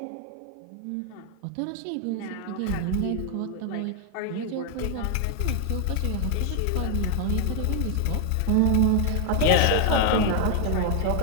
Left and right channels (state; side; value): different; both; correlation 0.01